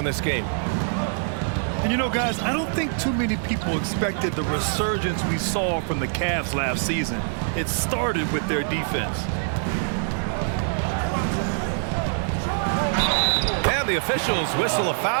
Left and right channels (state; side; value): silent; left; digital silence